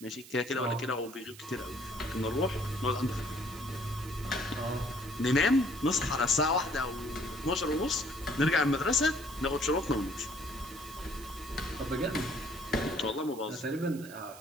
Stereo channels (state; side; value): noise; right; hiss, 18 dB below the sound